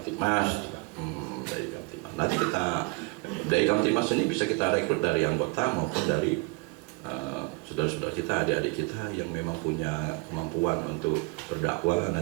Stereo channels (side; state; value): left; quieter; 28.6 dB